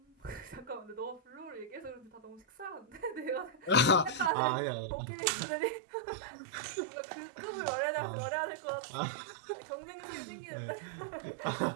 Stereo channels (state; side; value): drops out; left; at 4.3 s